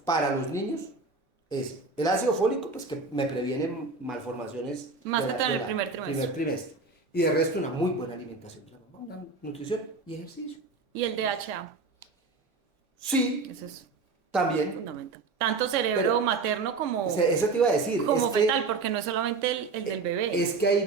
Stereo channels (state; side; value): quieter; left; 4.0 dB